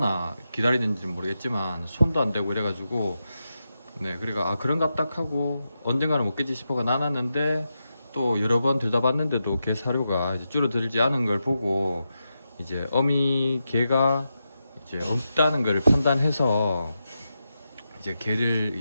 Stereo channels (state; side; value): inverted; both; correlation -0.88